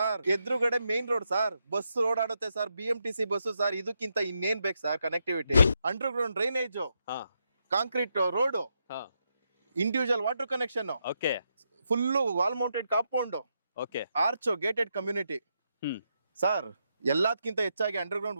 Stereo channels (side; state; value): both; inverted; correlation -0.82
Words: ಎದುರುಗಡೆ ಮೇನ್ ರೋಡ್ ಸರ್. ಬಸ್ ಓಡಾಡುತ್ತೆ ಸರ್. BMTC bus sir. ಇದಕ್ಕಿಂತ ಇನ್ನೇನ್ ಬೇಕು ಸರ್ ಕನೆಕ್ಟಿವಿಟಿ? ಅಂಡರ್ಗ್ರೌಂಡ್ ಡ್ರೈನೇಜ್, ಹಾ ಕಾಂಕ್ರೀಟ್ ರೋಡ್, ಹಾ individual water connection, okay full wall mounted compound, okay arch, gated community hmm sir. ಎಲ್ಲದಕ್ಕಿಂತ ಹೆಚ್ಚಾಗಿ underground